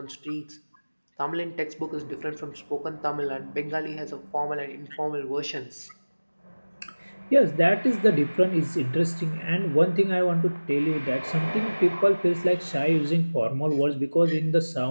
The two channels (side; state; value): both; inverted; correlation -1.00